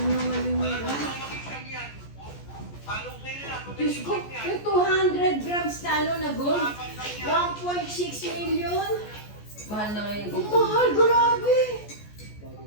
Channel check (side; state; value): right; late; 14 ms